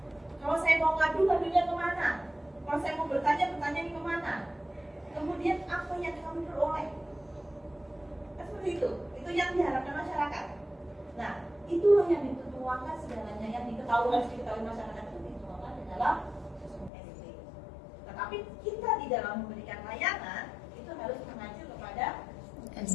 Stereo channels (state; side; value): drops out; right; at 16.9 s